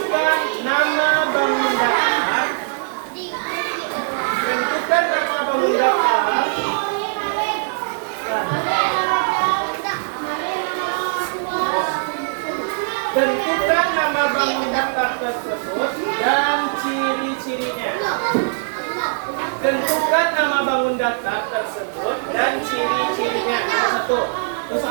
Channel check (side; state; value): left; silent; digital silence